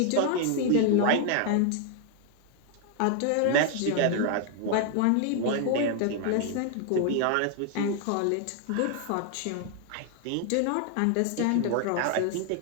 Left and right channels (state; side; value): different; both; correlation 0.00